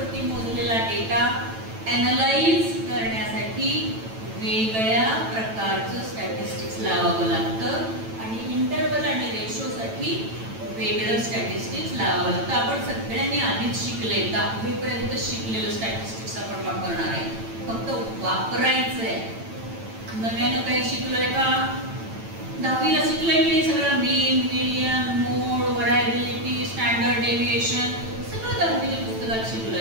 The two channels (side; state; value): left; late; 9.0 ms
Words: मोजलेला डेटा ॲनलाइज करण्यासाठी वेगळ्या प्रकारचं स्टॅटिस्टिक्स लावावं लागतं आणि इंटरव्हल आणि रेशोसाठी वेगळं स्टॅटिस्टिक्स लावावं लागतं. आपण सगळ्यांनी आधीच शिकले, 10वी पर्यंत शिकलेलं स्टॅटिस्टिक्स आपण वापरणार आहे, फक्त वापरायचंय. नव्यानं काही शिकलोय का? 10वीला शिकलोय की सगळं मीन, मीडियन, मोड, व्हरायबिलिटी, स्टँडर्ड डेव्हिएशन सगळं 10वीच्या पुस्तकात